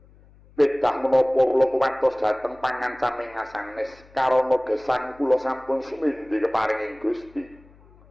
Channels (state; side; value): noise; left; hum, 26 dB below the sound